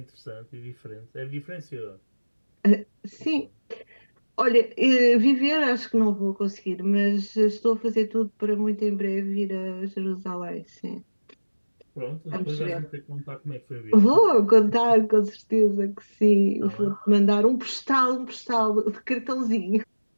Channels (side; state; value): both; inverted; correlation -1.00